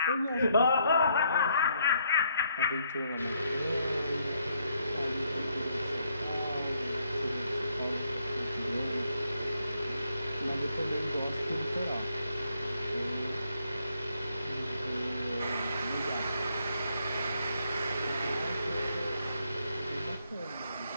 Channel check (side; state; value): both; inverted; correlation -0.73